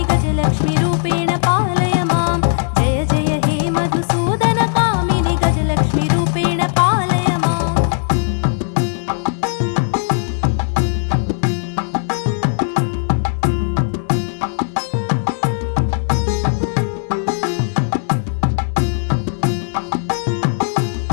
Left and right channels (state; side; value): silent; right; 68 dB below the other